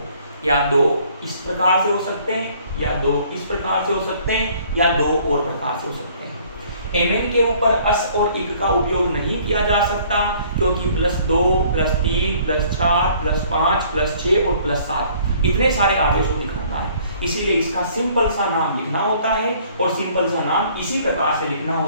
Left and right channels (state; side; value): inverted; both; correlation -0.58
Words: या 2 इस प्रकार से हो सकते हैं, या 2 इस प्रकार से हो सकते हैं, या 2 और प्रकार से हो सकते हैं। Mn के ऊपर अस और इक का उपयोग नहीं किया जा सकता, क्योंकि +2, +3, +4, +5, +6 और +7 इतने सारे आवेशों दिखाता है, इसीलिए इसका सिंपल सा नाम लिखना होता है और सिंपल सा नाम इसी प्रकार से लिखना